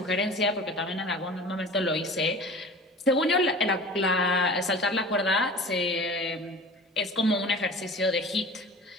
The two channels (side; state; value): both; normal; correlation 0.39